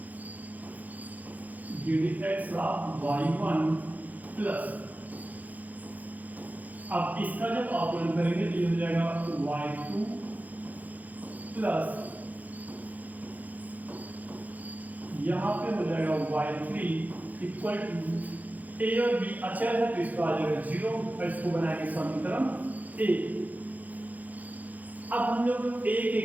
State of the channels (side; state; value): left; late; 0.080 ms